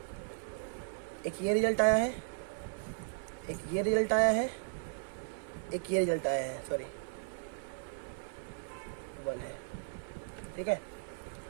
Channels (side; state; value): left; silent; 54 dB below the other